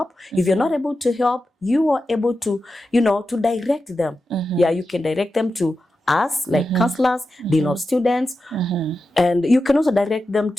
If you're not able to help, you are able to, to direct them. Yeah, you can direct them to us, like counselors, dean of students, and you can also direct them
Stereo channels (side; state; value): both; normal; correlation 0.91